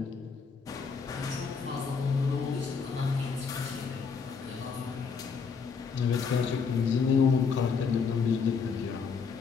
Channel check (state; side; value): quieter; right; 5.5 dB